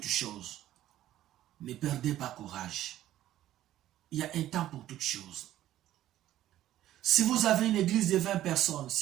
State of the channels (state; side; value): quieter; left; 13.3 dB